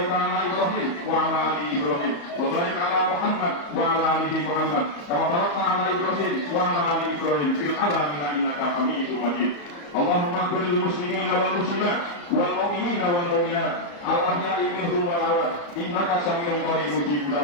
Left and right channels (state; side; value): late; right; 34 ms